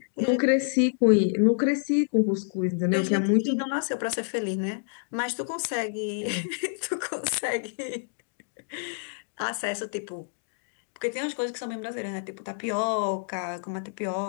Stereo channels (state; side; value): silent; right; digital silence